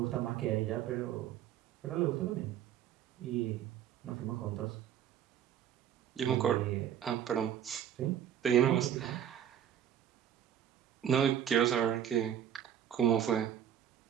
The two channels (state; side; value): quieter; left; 9.9 dB